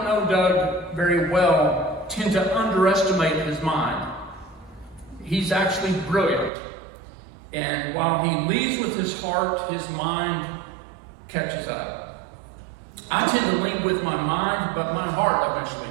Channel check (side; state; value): left; drops out; at 6.5 s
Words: know Doug very well tend to underestimate his mind. He's actually brilliant. And while he leads with his heart, his mind catches up. I tend to lead with my mind, but my heart eventually